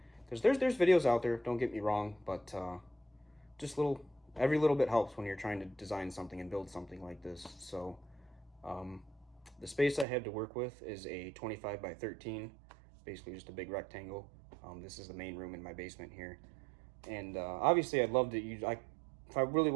There's videos out there, don't get me wrong, but just every little bit helps when you're trying to design something and build something like this. So the space I have to work with is a 25 by 13, basically just a big rectangle. This is the main room in my basement here, and obviously I'd love to use. If I really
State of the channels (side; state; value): left; drops out; at 10.1 s